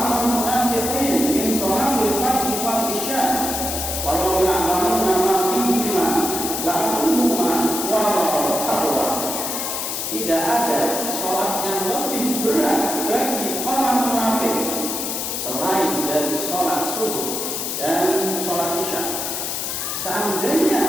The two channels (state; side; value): noise; left; hiss, 3 dB below the sound